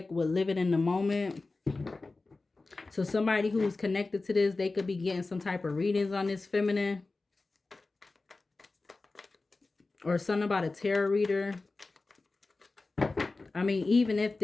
with living in the moment. So somebody who's connected to this, they could be getting some type of readings on this feminine. Or something about a tarot reader. I mean, even if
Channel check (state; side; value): quieter; right; 3.5 dB